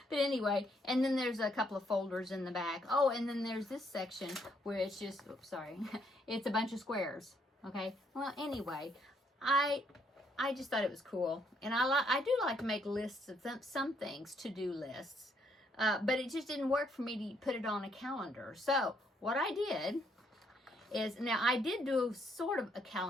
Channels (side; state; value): both; normal; correlation 0.71